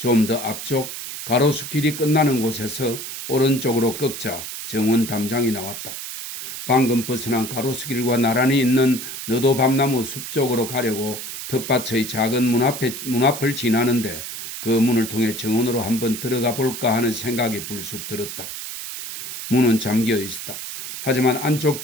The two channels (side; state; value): right; noise; hiss, 8 dB below the sound